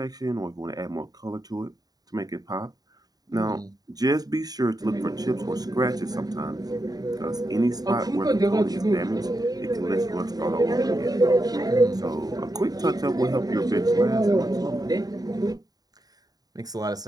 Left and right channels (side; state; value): left; late; 0.18 ms